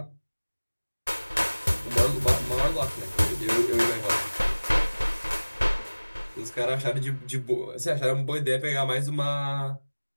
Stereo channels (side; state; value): both; inverted; correlation -1.00